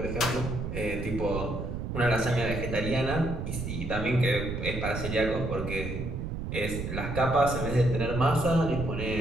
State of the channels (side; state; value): right; noise; rumble, 5 dB below the sound